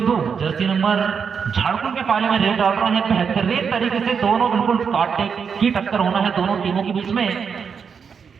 जर्सी नंबर झारखंड के पाले में रेड डाल रहे हैं। बेहतरीन तरीके से दोनों बिल्कुल कांटे की टक्कर होना है दोनों टीमों के बीच में।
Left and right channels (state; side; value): quieter; left; 6.4 dB